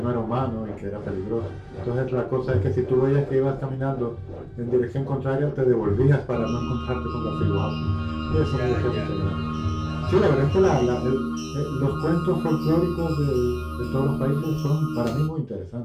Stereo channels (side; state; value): both; identical; correlation 1.00